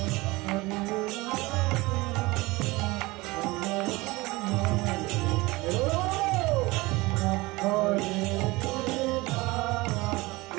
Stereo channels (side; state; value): left; quieter; 22.0 dB